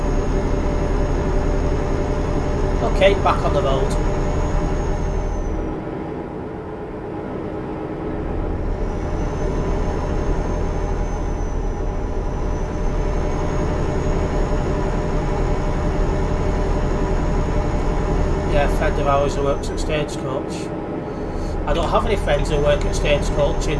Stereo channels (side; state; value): both; identical; correlation 1.00